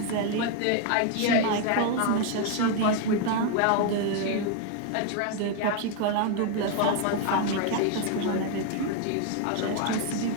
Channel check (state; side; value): different; both; correlation 0.01